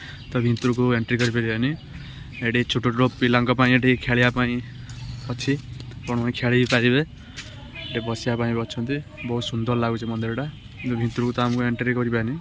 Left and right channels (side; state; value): both; identical; correlation 1.00